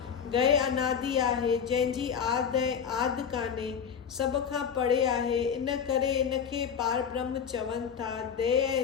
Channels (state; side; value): quieter; right; 7.3 dB